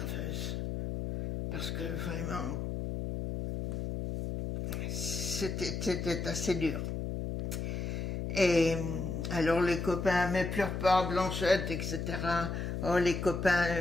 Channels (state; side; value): noise; left; hum, 3 dB below the sound